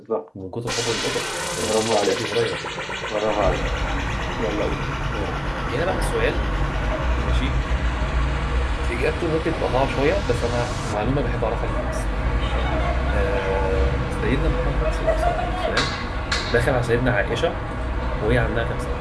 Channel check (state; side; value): identical; both; correlation 1.00